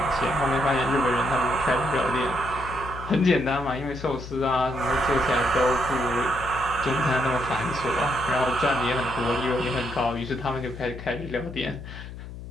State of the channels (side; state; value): left; noise; hum, 12 dB below the sound